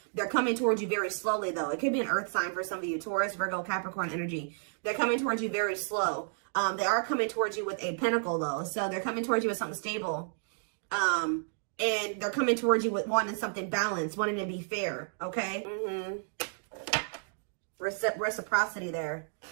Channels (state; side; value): silent; left; digital silence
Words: They're coming towards you very slowly though. It could be an earth sign for some of you. Taurus, Virgo, Capricorn energy. They're coming towards you very slow. They are coming towards you with a pentacle though. So they're coming towards you with something stable. And they're coming towards you with wanting something balanced, wanting to be fair, okay? Reciprocity there.